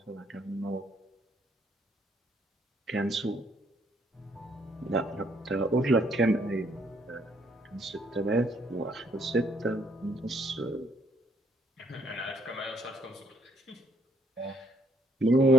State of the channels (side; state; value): both; normal; correlation 0.68